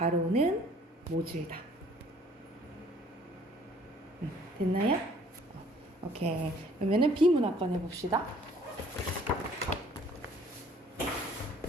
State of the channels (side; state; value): both; normal; correlation 0.57